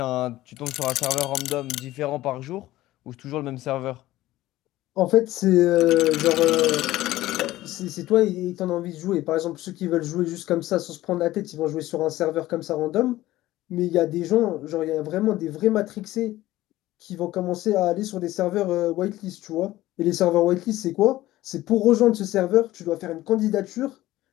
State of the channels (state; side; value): quieter; right; 16.2 dB